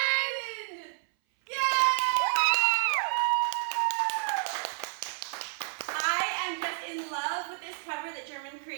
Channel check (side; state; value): left; silent; 57 dB below the other